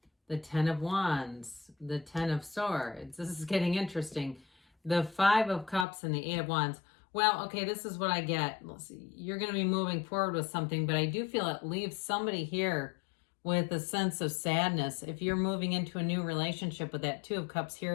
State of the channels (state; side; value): drops out; right; at 5.9 s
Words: the Ten of Wands, the Ten of Swords. This is getting interesting. The Five of Cups and the Eight of Wands. Well, okay, this is what I get. Let's see. You're going to be moving forward with something, but I do feel it leaves somebody here with a sense of sadness. If you're moving into a new relationship with that Two of Cups